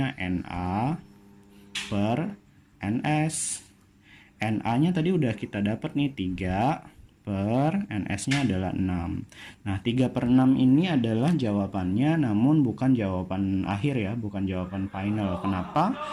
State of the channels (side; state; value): both; identical; correlation 1.00